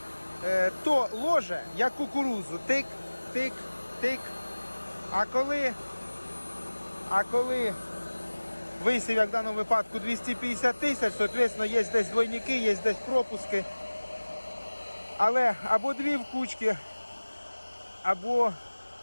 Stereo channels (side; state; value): both; inverted; correlation -1.00